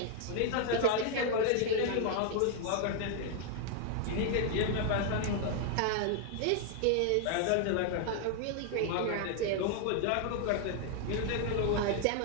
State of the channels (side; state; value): both; different; correlation 0.00